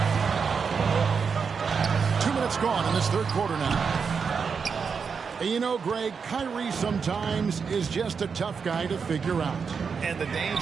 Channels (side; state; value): left; quieter; 5.8 dB